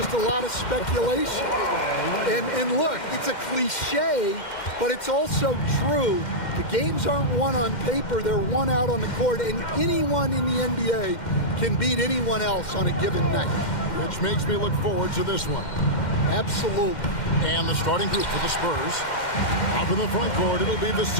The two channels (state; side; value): late; right; 2.1 ms